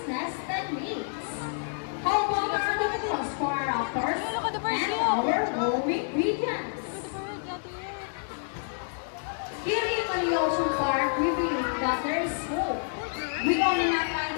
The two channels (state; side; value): silent; right; digital silence